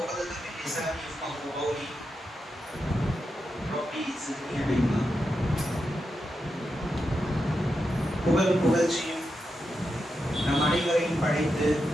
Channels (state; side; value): normal; both; correlation 0.87